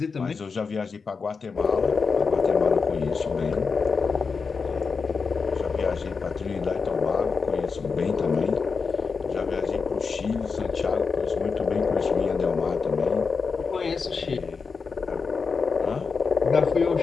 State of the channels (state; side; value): quieter; right; 5.1 dB